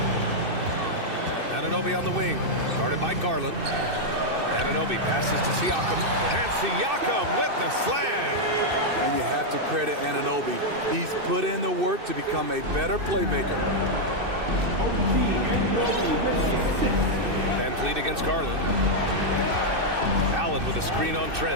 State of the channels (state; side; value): late; left; 2.6 ms